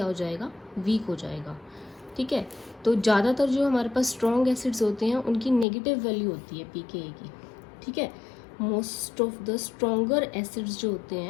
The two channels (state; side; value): drops out; right; at 5.7 s